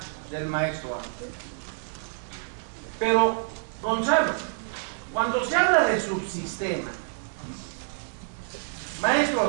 del maestro Ángel. Pero, Gonzalo, cuando se habla de subsistema, maestro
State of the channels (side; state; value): left; silent; 60 dB below the other